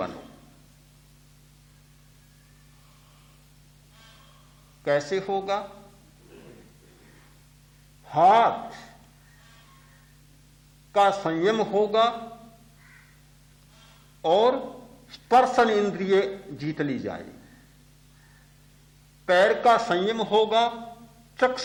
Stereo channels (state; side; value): identical; both; correlation 1.00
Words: कैसे होगा? हाथ का संयम होगा और स्पर्शन इंद्रिय जीत ली जाए। पैर का संयम होगा,